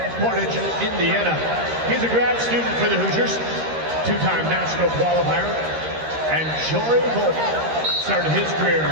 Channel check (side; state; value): left; late; 13 ms